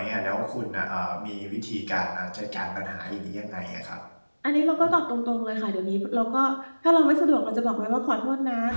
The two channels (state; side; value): inverted; both; correlation -1.00